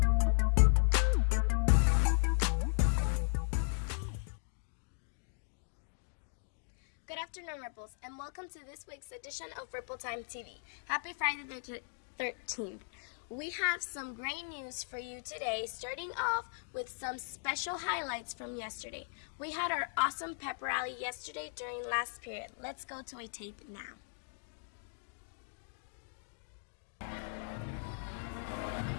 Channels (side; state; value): right; silent; digital silence